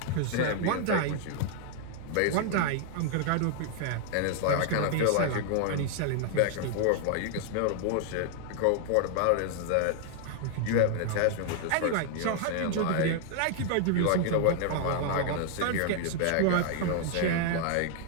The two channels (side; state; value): both; different; correlation 0.00